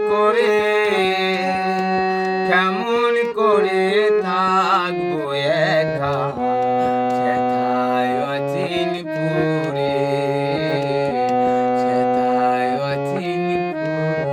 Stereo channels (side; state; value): both; identical; correlation 1.00